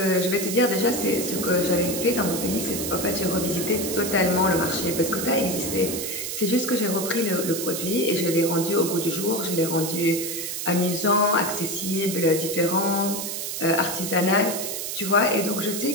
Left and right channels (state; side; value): noise; right; hiss, 4 dB below the sound